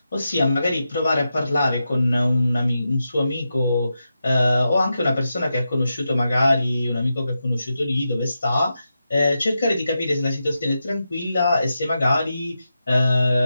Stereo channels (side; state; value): both; inverted; correlation -0.88